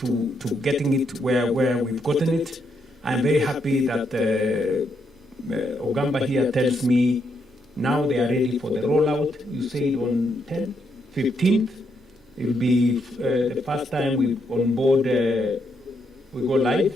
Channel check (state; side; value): normal; both; correlation 0.77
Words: getting it where we've gotten it. I'm very happy that Ogamba here tells me now they are ready for the rollout. You say on 15th. It will be the first time we on board. We go live,